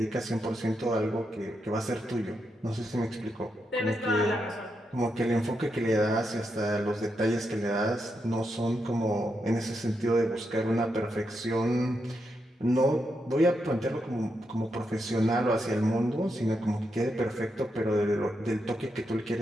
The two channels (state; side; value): normal; both; correlation 0.83